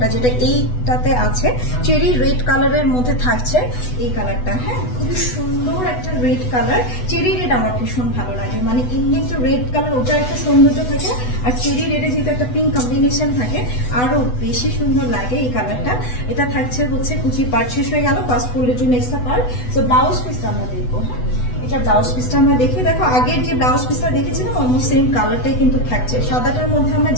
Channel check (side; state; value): right; late; 8.1 ms